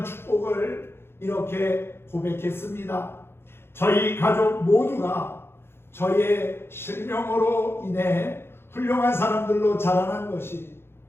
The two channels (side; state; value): right; late; 0.11 ms